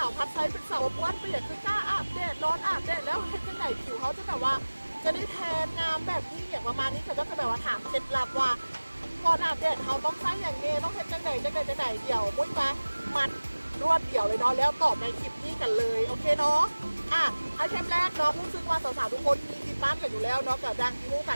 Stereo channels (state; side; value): inverted; both; correlation -1.00